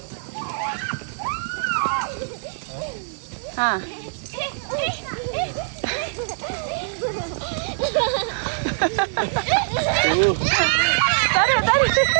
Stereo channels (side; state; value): left; silent; digital silence